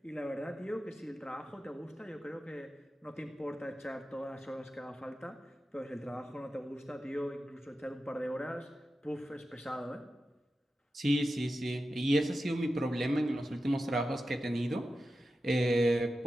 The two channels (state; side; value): normal; both; correlation 0.92